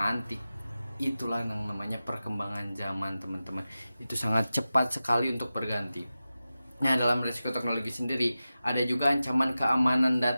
Itulah yang namanya perkembangan zaman teman-teman, itu sangat cepat sekali untuk berganti. Nah, dalam risiko teknologi sendiri ada juga ancaman keamanan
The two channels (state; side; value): inverted; both; correlation -0.94